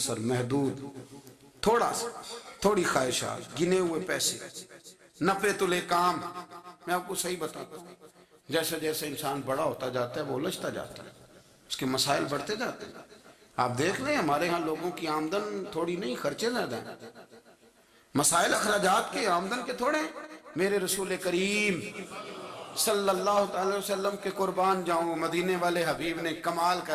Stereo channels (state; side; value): identical; both; correlation 1.00